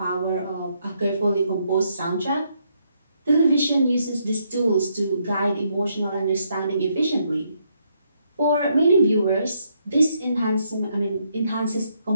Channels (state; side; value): inverted; both; correlation -0.75